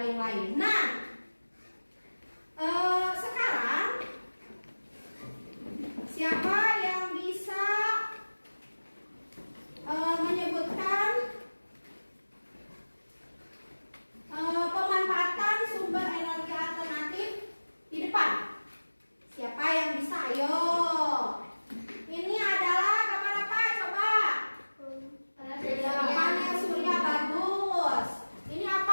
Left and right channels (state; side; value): inverted; both; correlation -1.00